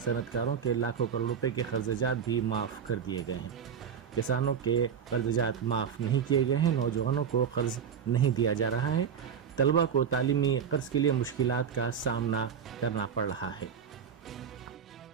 के लाखों करोड़ रुपए के कर्ज़जात भी माफ़ कर दिए गए हैं। किसानों के कर्ज़जात माफ़ नहीं किए गए हैं। नौजवानों को कर्ज़ नहीं दिया जा रहा है। तलबा को तालीमी कर्ज़ के लिए मुश्किलात का सामना करना पड़ रहा है।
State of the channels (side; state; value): left; quieter; 7.5 dB